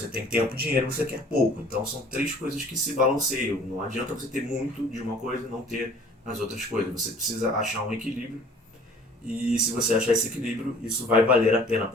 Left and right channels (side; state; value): both; normal; correlation 0.51